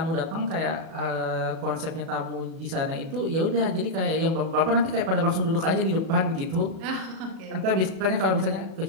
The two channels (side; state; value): left; late; 37 ms